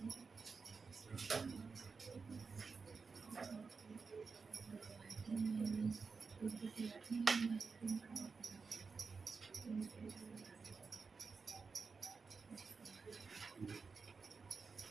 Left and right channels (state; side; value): quieter; left; 4.9 dB